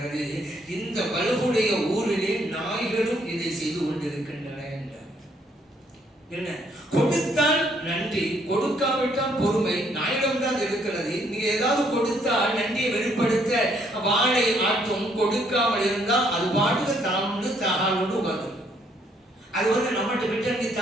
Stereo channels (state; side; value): normal; both; correlation 0.68